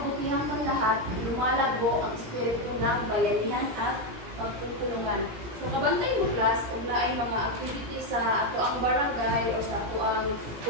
ng lahat, lumalago ang espiritu ng bayanihan at pagtutulungan. So, kabantay mo class, kung na ay mga activities sa ato ang barangay o sa ato ang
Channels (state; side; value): late; left; 17 ms